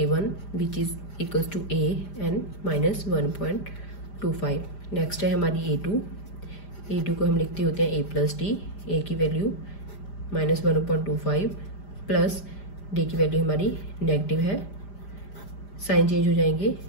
which is equals to a and -1.25। Next है हमारी a2 को हम लिखते होते हैं a प्लस डी। a की वैल्यू -1.25 प्लस d की वैल्यू हमारी नेगेटिव है, साइन चेंज हो जाएंगे,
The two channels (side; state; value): right; late; 5.0 ms